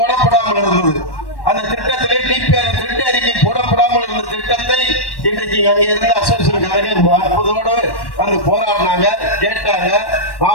இருந்தது. அந்த திட்டத்திலே டிபிஆர் திட்ட அறிக்கை போடப்படாமல் இருந்த திட்டத்தை இன்றைக்கு அங்கே இருந்த அசோசியேஷன் அற்புதோடு வந்து போராடினாங்க, கேட்டாங்க.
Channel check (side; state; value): right; late; 1.1 ms